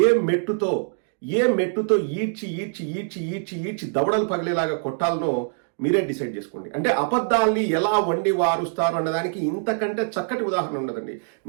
ఏ మెట్టుతో ఈడ్చి దవడలు పగిలేలాగా కొట్టాలనో మీరే డిసైడ్ చేసుకోండి. అంటే అబద్ధాల్ని ఎలా వండి వారుస్తారు అన్నదానికి ఇంతకంటే చక్కటి ఉదాహరణ ఉండదండి.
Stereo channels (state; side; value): silent; left; digital silence